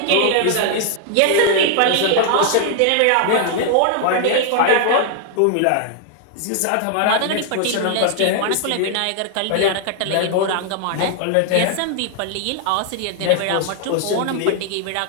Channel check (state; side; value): different; both; correlation 0.00